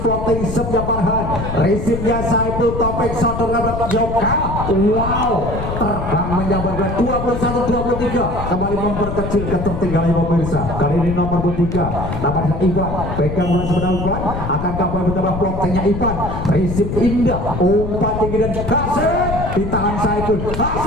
floating sepnya Farhan, risipnya Saiful, Topik sodor ngabrak Yoga, wow, terbang menjabarkan 21-23. Kembali memperkecil ketertinggalan pemirsa. Kali ini nomor 23 namanya Ivan, pegang bola sebelah Ivan, akankah boleh bertambah floatingnya Ivan, risip indah, umpan tinggi dan Hasim, ditahan Saiful,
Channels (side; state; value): left; noise; rumble, 5 dB below the sound